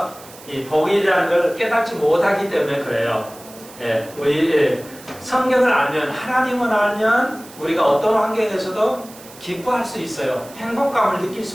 이 복이라는 걸 깨닫지 못하기 때문에 그래요. 우리 성경을 알면, 하나님을 알면 우리가 어떤 환경에서도 기뻐할 수 있어요. 행복감을 느낄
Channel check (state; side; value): noise; right; hiss, 20 dB below the sound